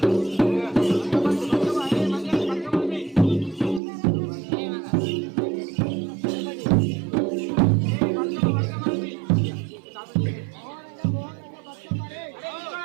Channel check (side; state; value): left; drops out; at 3.8 s